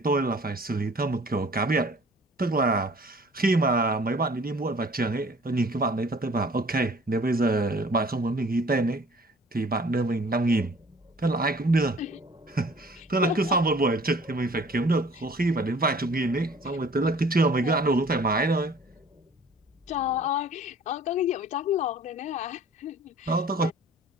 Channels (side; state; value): both; normal; correlation 0.51